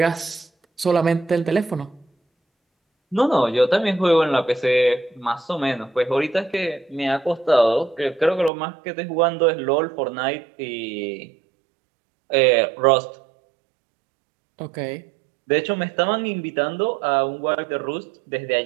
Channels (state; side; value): drops out; left; at 8.5 s